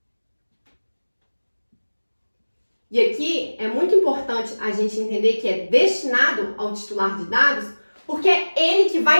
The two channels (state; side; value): inverted; both; correlation -1.00